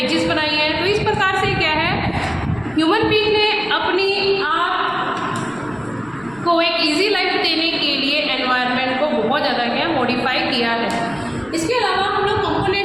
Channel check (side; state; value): left; noise; rumble, 24 dB below the sound